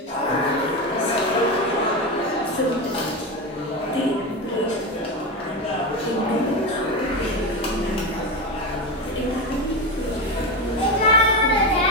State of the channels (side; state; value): both; normal; correlation 0.17